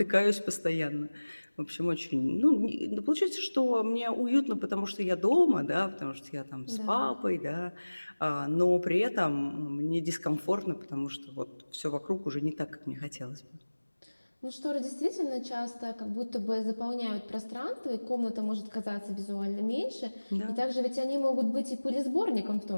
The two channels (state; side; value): inverted; both; correlation -1.00